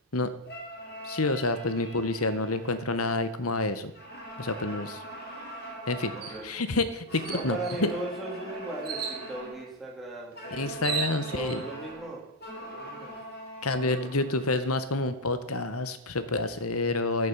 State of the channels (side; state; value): both; normal; correlation 0.00